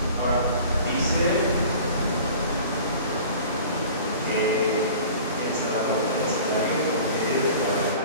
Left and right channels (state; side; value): inverted; both; correlation -0.43